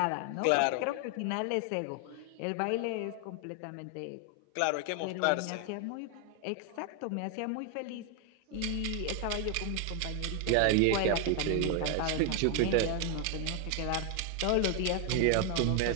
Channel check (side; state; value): both; different; correlation 0.01